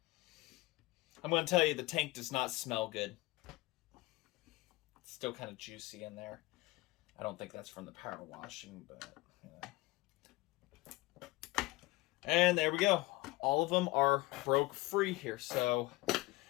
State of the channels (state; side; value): quieter; right; 21.0 dB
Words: I'm going to tell you, the tank does not smell good. It's still kind of juicy in there. I don't think that's from the power washing, but, you know. And there we go. All of them are broke free here. So